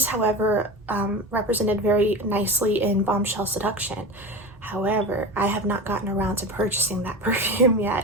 however, represented very nicely in Bombshell Seduction. However, I have not gotten around to purchasing that perfume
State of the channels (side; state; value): both; normal; correlation 0.28